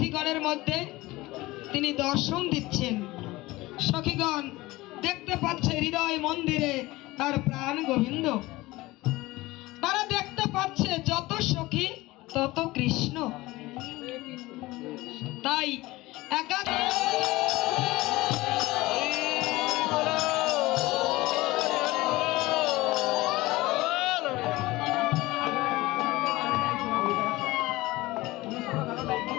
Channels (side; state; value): right; quieter; 19.7 dB